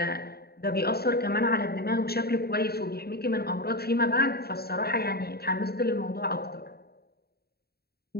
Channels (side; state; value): right; late; 0.46 ms